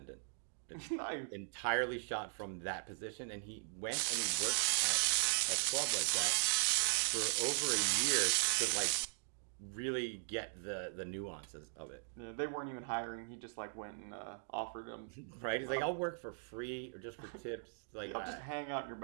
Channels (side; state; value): left; silent; digital silence